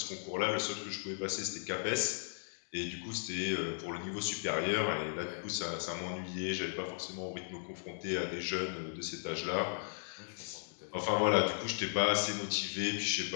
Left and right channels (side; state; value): right; silent; digital silence